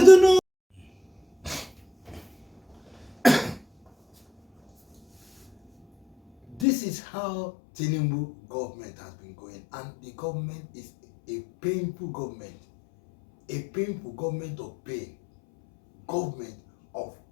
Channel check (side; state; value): right; drops out; at 6.7 s